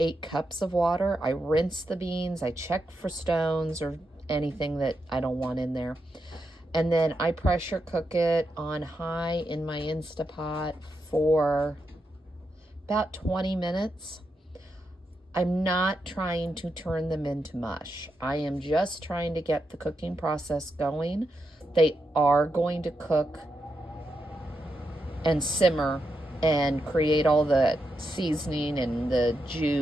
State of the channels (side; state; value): both; normal; correlation 0.85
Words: cups of water. I rinse the beans. I check for stones or anything that I don't want in there. And then I pressure cook it on high in my Instapot for about 20 minutes. I'm not trying to turn them into mush. I am just trying to get the cooking process going. They are going to cook and simmer and create all the seasoning and the